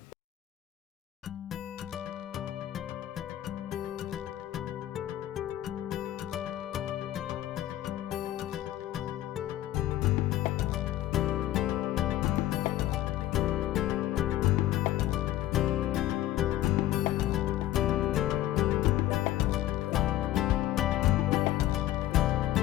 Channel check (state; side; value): quieter; right; 14.1 dB